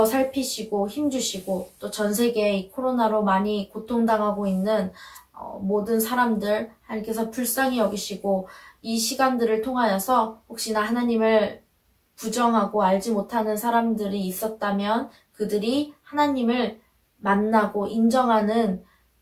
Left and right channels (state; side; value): identical; both; correlation 1.00